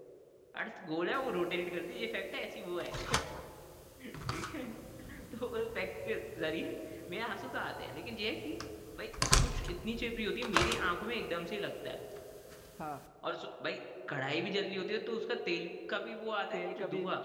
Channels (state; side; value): identical; both; correlation 1.00